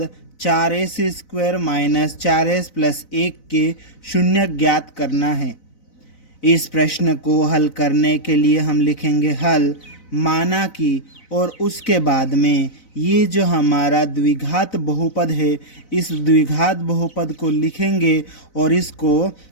4s² माइनस 4s प्लस 1 के शून्यक ज्ञात करना है। इस प्रश्न को हल करने के लिए हम लिखेंगे हल, माना कि, और उसके बाद में ये जो हमारा द्विघात बहुपद है इस द्विघात बहुपद को लिखेंगे और इसको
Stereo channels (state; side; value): late; right; 4.0 ms